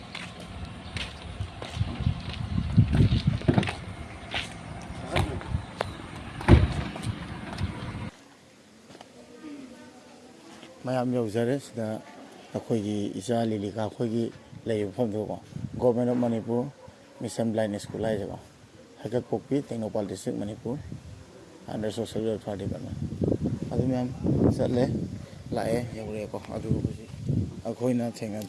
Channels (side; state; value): both; identical; correlation 1.00